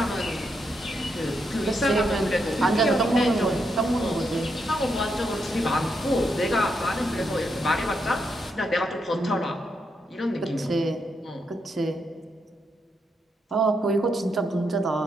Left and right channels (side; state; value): both; normal; correlation 0.81